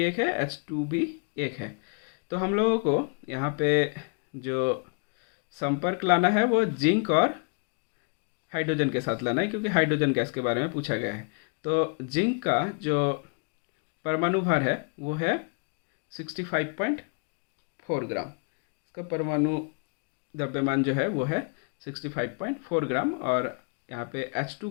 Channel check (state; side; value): quieter; right; 36.6 dB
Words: एक है, H2 भी एक है। तो हम लोगों को यहाँ पे जो संपर्क लाना है वो जिंक और हाइड्रोजन के साथ लाना है, क्योंकि हाइड्रोजन गैस के बारे में पूछा गया है। तो जिंक का जो परमाणु भार है वो है 65.4 ग्राम। इसका परमाणु द्रव्यमान जो है वो है 65.4 ग्राम। और यहाँ पे H2